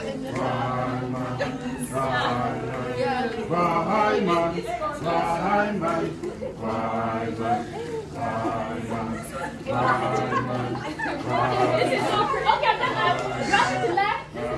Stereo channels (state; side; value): identical; both; correlation 1.00